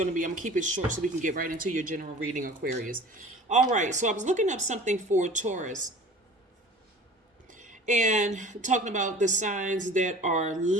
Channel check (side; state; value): both; normal; correlation 0.43